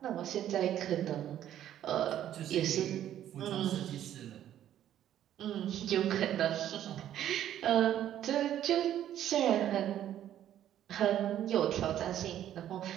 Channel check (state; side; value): quieter; left; 11.3 dB